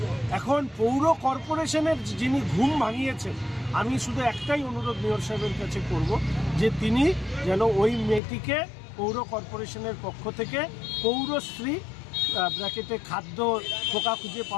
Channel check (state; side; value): drops out; right; at 8.2 s